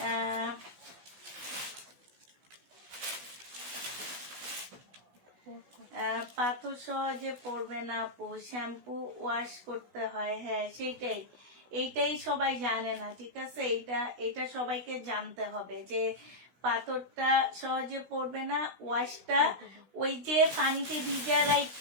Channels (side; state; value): left; late; 16 ms